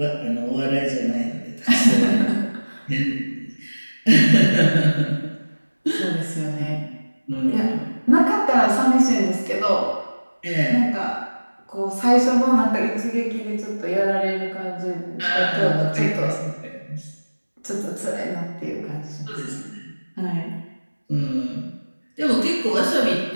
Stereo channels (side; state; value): both; inverted; correlation -1.00